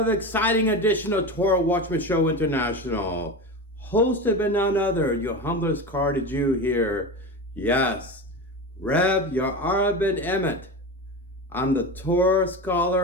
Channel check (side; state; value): both; normal; correlation 0.24